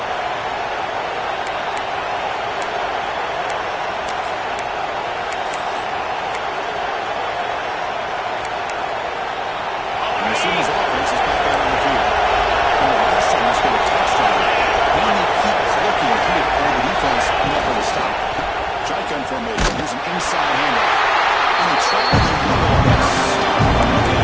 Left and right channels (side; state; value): both; identical; correlation 1.00